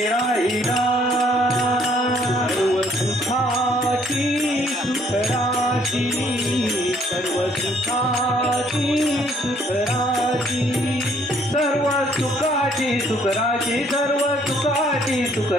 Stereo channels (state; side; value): normal; both; correlation 0.64